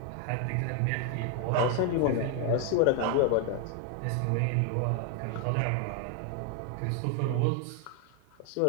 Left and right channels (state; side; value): different; both; correlation 0.01